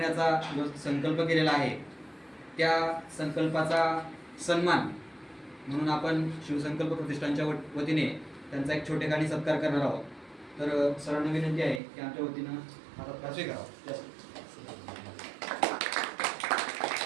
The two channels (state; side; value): drops out; left; at 11.8 s